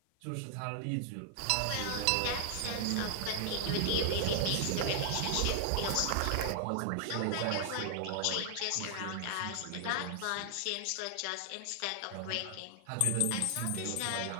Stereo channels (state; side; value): different; both; correlation 0.00